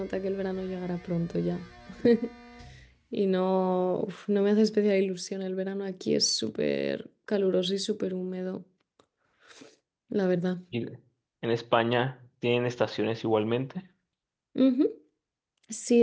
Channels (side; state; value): both; identical; correlation 1.00